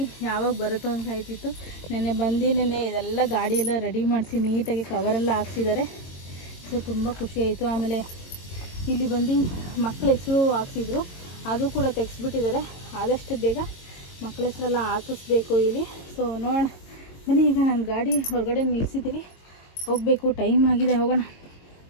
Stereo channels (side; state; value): right; late; 22 ms